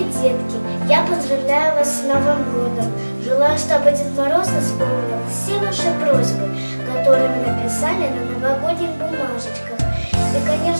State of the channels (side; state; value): both; inverted; correlation -1.00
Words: детки, я поздравляю вас с Новым годом. Желаю, чтобы Дед Мороз исполнил все ваши просьбы, которые вы написали на новогодних бумажечках. И,